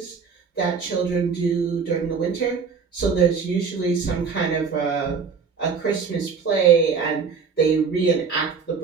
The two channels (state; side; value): quieter; left; 5.7 dB